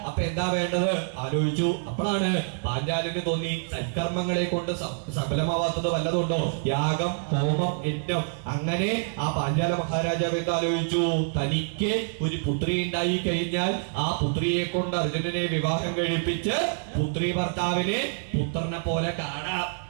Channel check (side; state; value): left; silent; 60 dB below the other